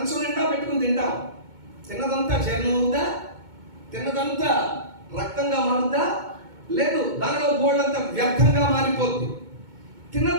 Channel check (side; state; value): left; late; 2.2 ms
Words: నిండా పెట్టుకుని తింటాం. తిన్నదంతా జీర్ణం అవుద్దా? తిన్నదంతా రక్తంగా మారుద్దా? లేదు, దానిలో బోర్డంతా వ్యర్థంగా మారిపోద్ది.